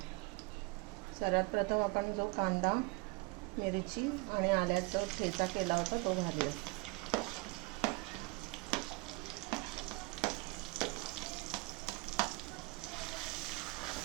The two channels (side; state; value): left; quieter; 25.8 dB